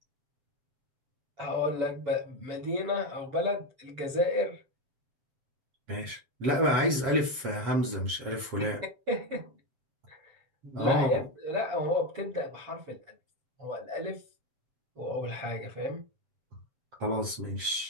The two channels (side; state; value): left; late; 7.5 ms